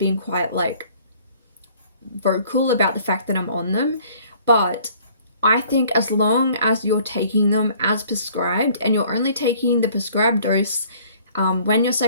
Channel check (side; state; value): both; inverted; correlation -0.56